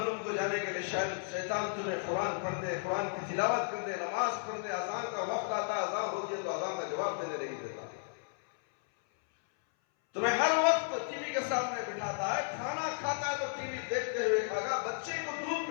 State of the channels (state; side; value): silent; right; 55 dB below the other